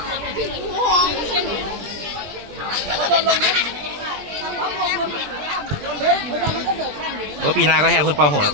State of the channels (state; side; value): late; left; 20 ms